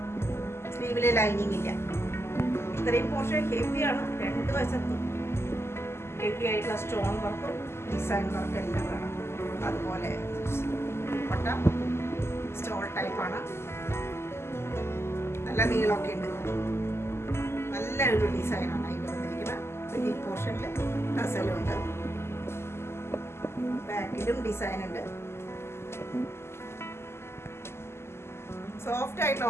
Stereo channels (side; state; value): right; late; 0.12 ms